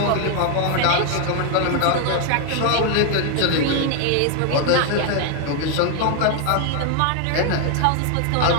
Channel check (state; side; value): different; both; correlation 0.00